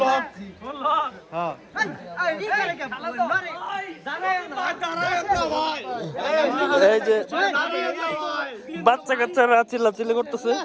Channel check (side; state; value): both; identical; correlation 1.00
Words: লক হ্যাঁ এই যে বাচ্চা কাচ্চারা চিল্লাচিল্লি করতেছে